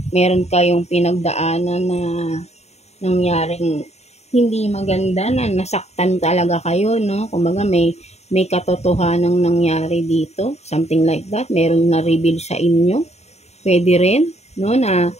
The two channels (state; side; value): late; right; 0.32 ms